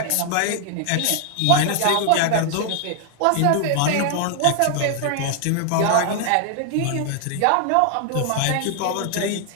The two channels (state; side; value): different; both; correlation 0.00